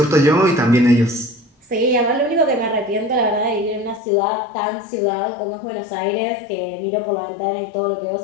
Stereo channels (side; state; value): right; drops out; at 4.0 s